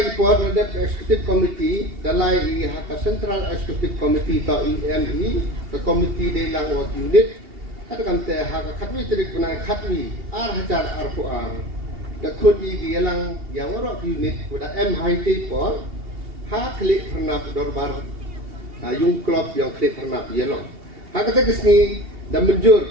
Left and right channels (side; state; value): left; late; 2.8 ms